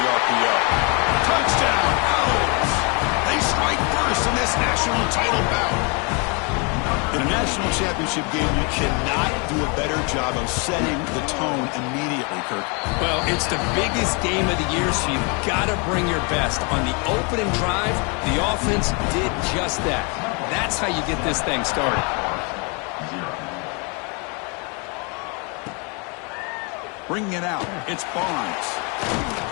RPO. Touchdown, Owls! They strike first in this national title bout. In a national championship game, you cannot do a better job of setting the tone immediately, Kirk. Well, it's the biggest game of the year, so you've got to bring your best. On the opening drive, the offense did just that. That's how you get this thing started. Bringing it out, it's Barnes.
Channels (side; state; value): right; quieter; 33.2 dB